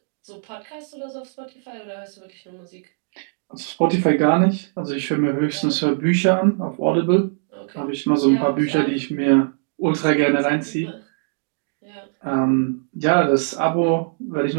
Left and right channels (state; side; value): silent; left; digital silence